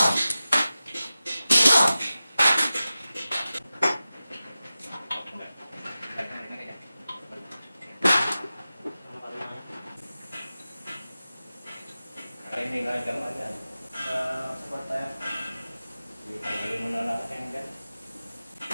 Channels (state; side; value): inverted; both; correlation -0.95